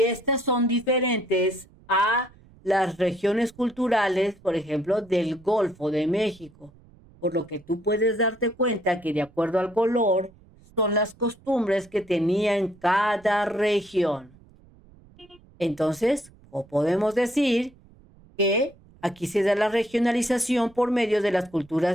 estas son diferentes a las regiones culturales, por ejemplo, del Golfo de México. Por lo que tú puedes darte cuenta que de acuerdo al color son las costumbres que tenía en cada región. Entonces, o podemos decir que aquí se da la regionalización por medio de las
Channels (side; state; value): right; noise; rumble, 26 dB below the sound